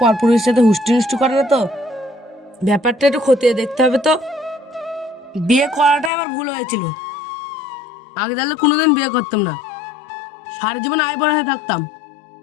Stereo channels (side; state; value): right; drops out; at 6.1 s